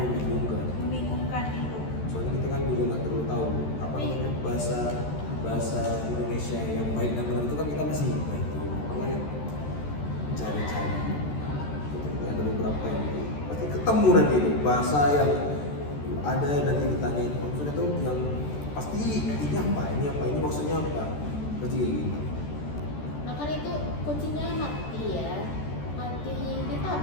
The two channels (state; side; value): late; right; 14 ms